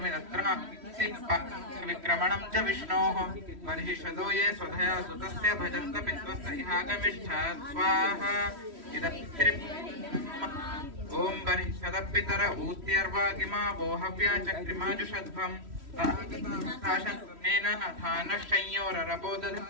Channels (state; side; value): late; left; 3.1 ms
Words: विक्रमणं च विष्णोः बर्हिषदो ये स्वधया सुतस्य भजन्त पित्वस्य इहागमिष्ठा स्वाहा इदं पितृभ्य ॐ बर्हिषदपितर ऊत्यर्वागिमा वो हव्या चक्रिमाजुषध्वम् ताशन्नेन